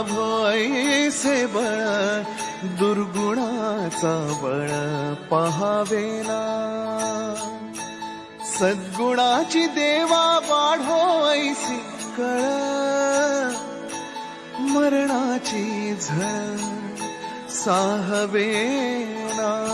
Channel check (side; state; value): both; identical; correlation 1.00